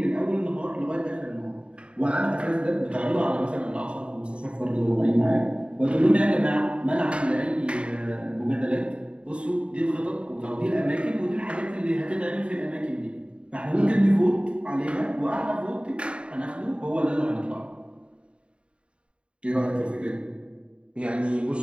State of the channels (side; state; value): left; late; 0.057 ms